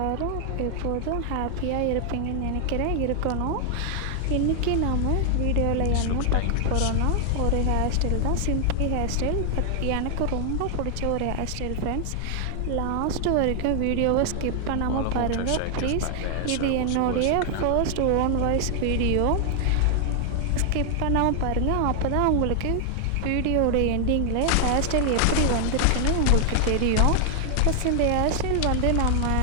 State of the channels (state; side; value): different; both; correlation 0.00